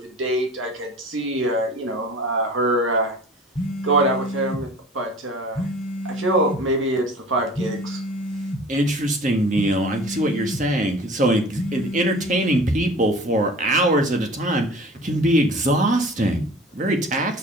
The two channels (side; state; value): both; normal; correlation 0.43